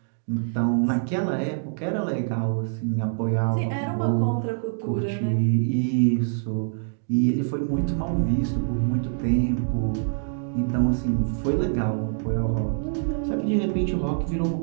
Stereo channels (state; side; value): silent; left; digital silence